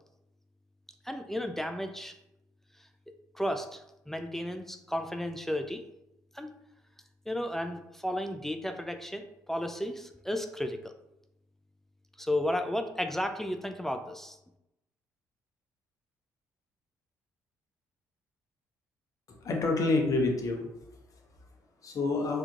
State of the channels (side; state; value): both; normal; correlation 0.79